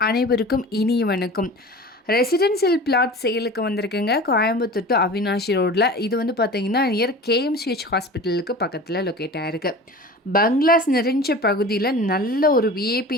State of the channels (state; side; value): normal; both; correlation 0.37